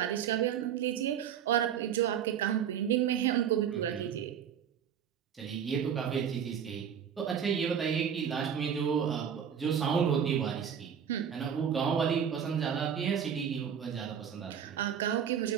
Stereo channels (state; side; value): quieter; left; 8.3 dB